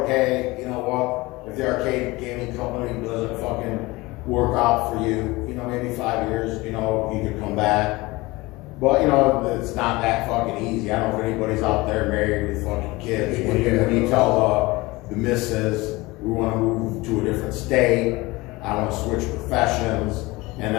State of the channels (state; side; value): quieter; right; 21.8 dB